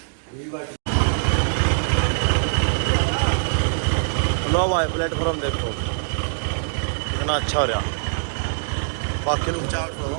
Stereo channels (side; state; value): left; silent; digital silence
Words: लो भाई प्लेटफॉर्म देखो कितना अच्छा हो रहा। बाकी लोग